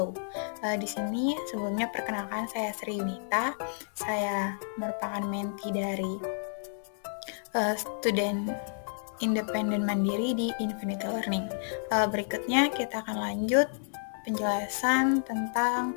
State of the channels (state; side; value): silent; right; 57 dB below the other